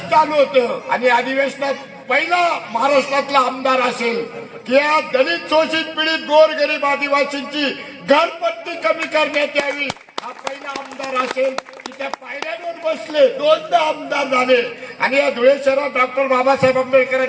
चालू होतं आणि अधिवेशनात पहिला महाराष्ट्रातला आमदार असेल की या दलित शोषित पीडित गोरगरीब आदिवासींची घरपट्टी कमी करण्यात यावी, हा पहिला आमदार असेल की त्या पायऱ्यांवर बसले, 2दा आमदार झाले. आणि या धुळे शहरात डॉक्टर बाबासाहेब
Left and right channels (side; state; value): both; identical; correlation 1.00